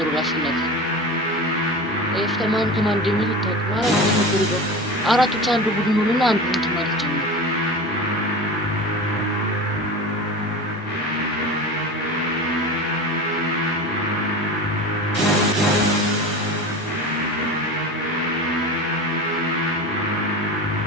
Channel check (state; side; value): normal; both; correlation 0.30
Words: አሸናፊ ኤፍተማን ከማን እንደሚል ታውቃለህ? አራቶች አንዱ ቡድን ሆነና አንዱ እንትን ማለት ጀመሩ።